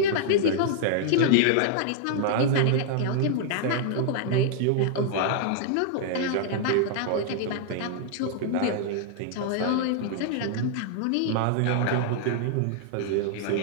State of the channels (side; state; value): both; different; correlation 0.00